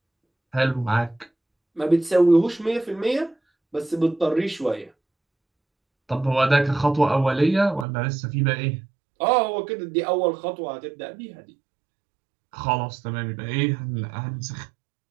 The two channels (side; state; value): left; drops out; at 7.9 s